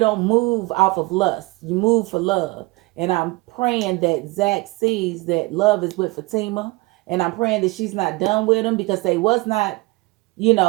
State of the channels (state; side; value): quieter; left; 23.7 dB